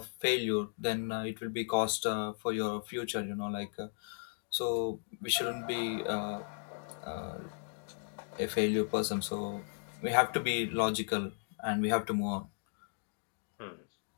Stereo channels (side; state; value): right; silent; digital silence